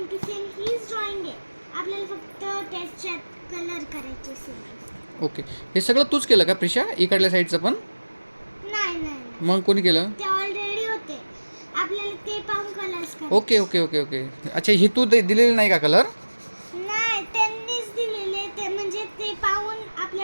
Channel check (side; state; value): both; inverted; correlation -1.00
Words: टू सेम हीच ड्रॉइंग आहे. आपल्याला फक्त त्याच्यात कलर करायचे सेम. ओके, हे सगळं तूच केलं का प्रिशा? इकडल्या साईडचं पण? नाही नाही, मग कोणी केलं? ते ऑलरेडी होते. आपल्याला ते पाहून कलर्स करायचे. Okay okay okay okay. अच्छा, ही तू दिलेली नाही का कलर? नाही, त्यांनीच दिलेले. ते म्हणजे ते पाहून